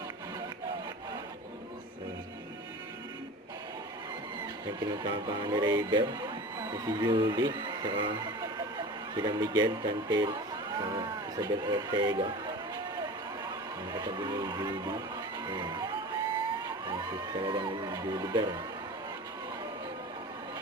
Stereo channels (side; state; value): both; normal; correlation 0.35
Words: Yung pinagkapangan ni Rayber, si Julie, saka sila Miguel Cantel, saka Isabel Ortega. Ang katabi ni Julie. Ayan. Ang talagang Julie Bear.